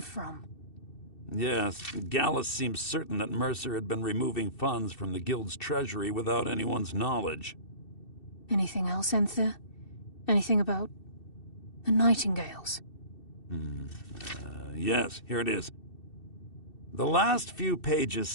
Yes, Gallus seems certain that Mercer had been removing funds from the Guild's treasury without anyone's knowledge. Anything else, Enther? Anything about the Nightingales? Yes, here it is. The last few pages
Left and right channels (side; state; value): right; late; 2.7 ms